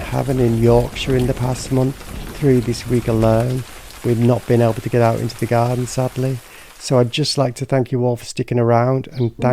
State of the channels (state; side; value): identical; both; correlation 1.00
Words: in Yorkshire in the past month. 3 this week alone. We've not been able to get out into the garden, sadly. So I'd just like to thank you all for sticking around and